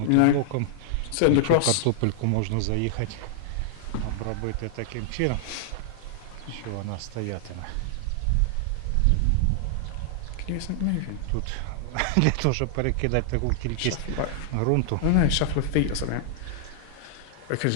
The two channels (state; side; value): different; both; correlation 0.00